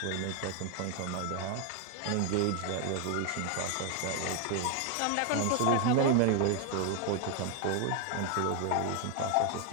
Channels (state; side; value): different; both; correlation 0.01